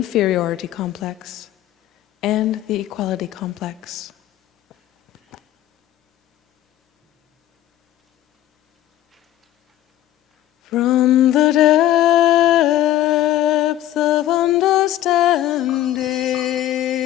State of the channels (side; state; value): right; quieter; 13.6 dB